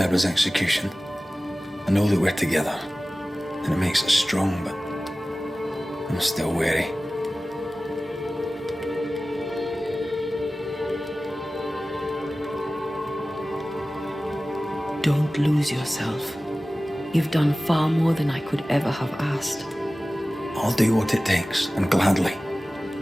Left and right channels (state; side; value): normal; both; correlation 0.97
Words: execution. I know that we're together, and it makes us strong, but I'm still wary. Don't lose yourself. You've done far more than I could ever have asked. I'll do what it takes, and gladly.